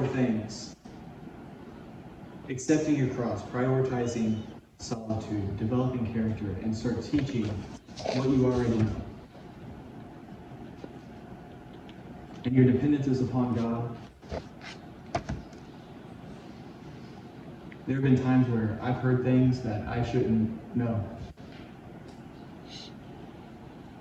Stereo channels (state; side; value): identical; both; correlation 1.00